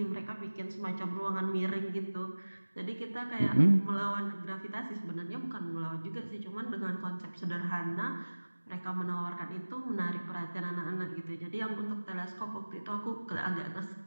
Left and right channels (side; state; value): both; inverted; correlation -1.00